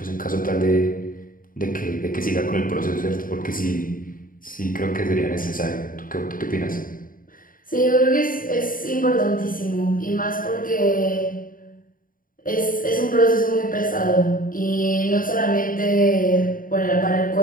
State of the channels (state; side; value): late; right; 0.40 ms